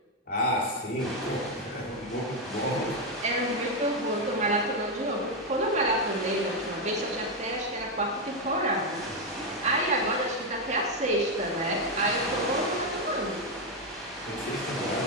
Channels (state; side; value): normal; both; correlation 0.05